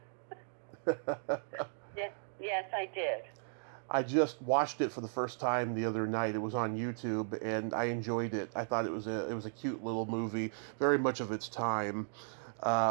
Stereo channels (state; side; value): silent; left; digital silence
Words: Yes, I did. I just watched it for the first time the other night. It was on YouTube, and I enjoyed it. I thought it was a cute little movie, very much of its time.